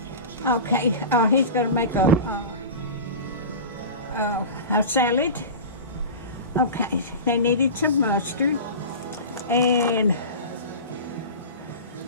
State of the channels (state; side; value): inverted; both; correlation -0.31